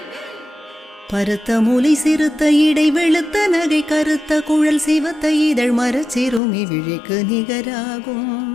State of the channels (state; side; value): drops out; right; at 6.4 s